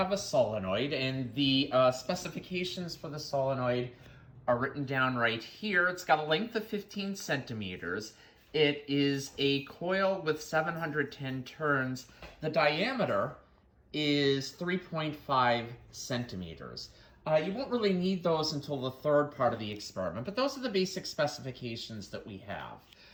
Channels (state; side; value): identical; both; correlation 1.00